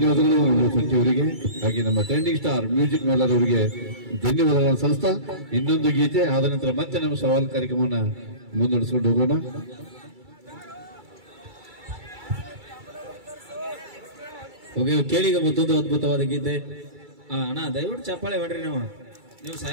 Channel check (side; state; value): left; late; 2.3 ms